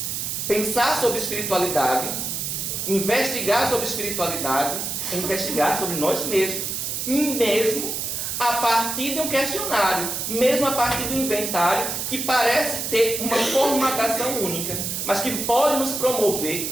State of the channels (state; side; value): noise; right; hiss, 3 dB below the sound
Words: Pensar sobre espiritualidade, investigar sobre espiritualidade, é investigar sobre nós mesmos, mesmo a partir de um questionário, mesmo a partir do inventário, que parece ter uma formatação única, mas que pode nos promover